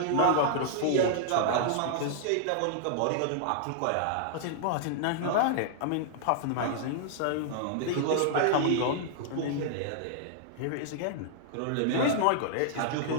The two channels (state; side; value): different; both; correlation -0.01